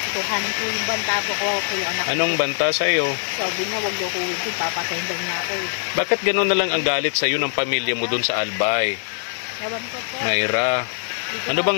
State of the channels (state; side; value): silent; right; 59 dB below the other